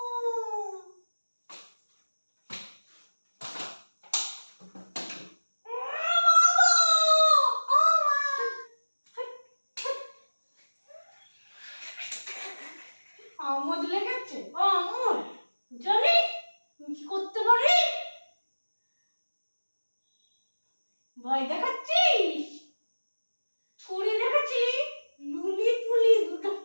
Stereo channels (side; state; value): both; inverted; correlation -1.00